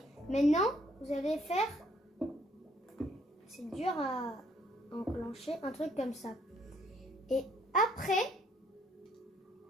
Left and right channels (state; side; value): normal; both; correlation 0.66